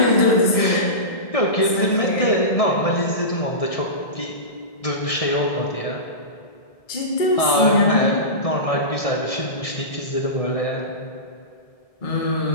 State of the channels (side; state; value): right; late; 1.7 ms